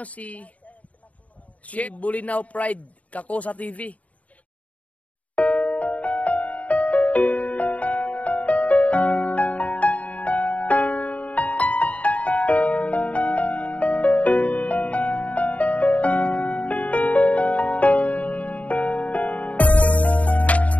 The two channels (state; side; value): late; right; 0.069 ms